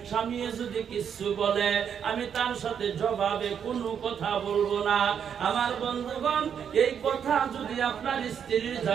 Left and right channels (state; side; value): quieter; left; 7.9 dB